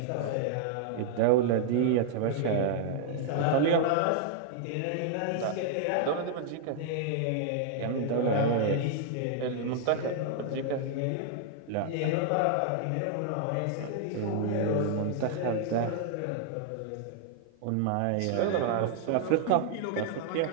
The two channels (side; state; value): both; different; correlation 0.00